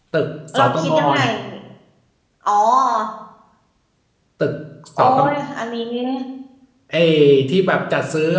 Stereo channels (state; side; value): identical; both; correlation 1.00